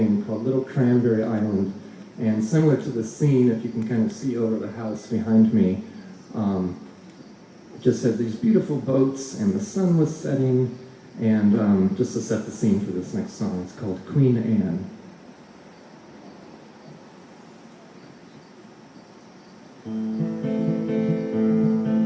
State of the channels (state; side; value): identical; both; correlation 1.00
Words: called Little Cranberry Island. And similar to the scene, if you can kind of see over the house behind me, it just had these beautiful boats and the sun was setting. And just to set the scene for this next song, it's called Queen Anne.